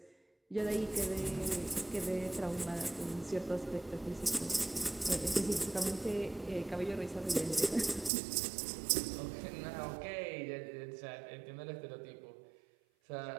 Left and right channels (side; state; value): left; drops out; at 8.1 s